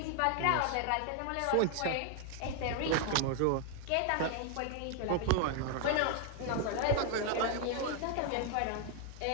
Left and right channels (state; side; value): different; both; correlation 0.00